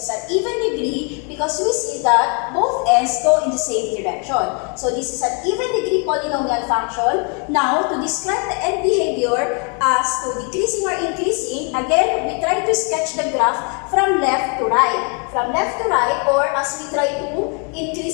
is an even degree because we see that both ends go in the same direction. So this is an even degree polynomial function. Now, to describe the end behavior as to decreasing or increasing, again, we try to sketch the graph from left to right. From left to right, or as we try to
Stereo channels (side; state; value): right; quieter; 37.0 dB